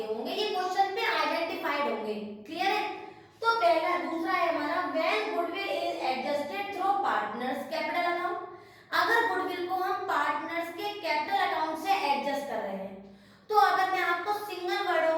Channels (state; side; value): identical; both; correlation 1.00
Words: होंगे, ये क्वेश्चन पे आइडेंटिफाइड होंगे। क्लियर है? तो पहला, दूसरा है हमारा when goodwill is adjusted through partners capital account. अगर गुडविल को हम पार्टनर्स के कैपिटल अकाउंट से एडजस्ट कर रहे हैं, तो अगर मैं आपको सिंगल